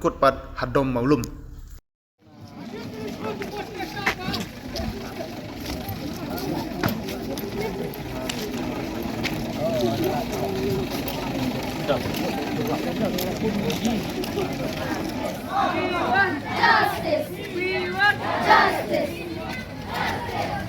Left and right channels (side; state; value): both; identical; correlation 1.00